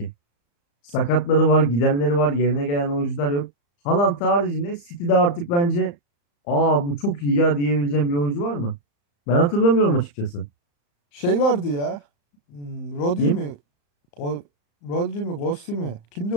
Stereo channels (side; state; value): right; late; 35 ms